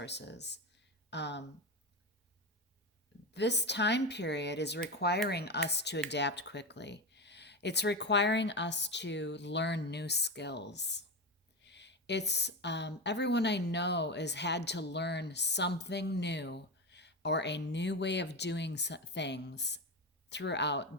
This time period is requiring us to adapt quickly. It's requiring us to learn new skills. It's everyone I know has had to learn something new or a new way of doing things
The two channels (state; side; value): normal; both; correlation 0.19